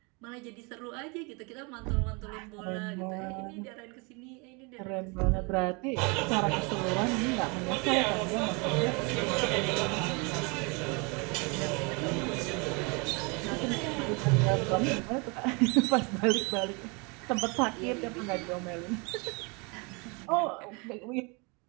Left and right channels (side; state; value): left; quieter; 30.5 dB